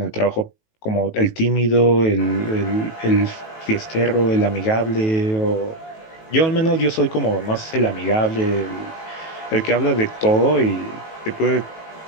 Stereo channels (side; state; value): right; late; 18 ms